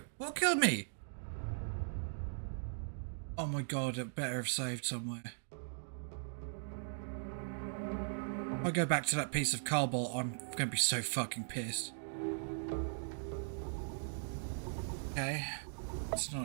What killed me? Oh my god, it better have saved somewhere. If I go back to that piece of cobble, I'm gonna be so fucking pissed. Okay. It's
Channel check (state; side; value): silent; left; digital silence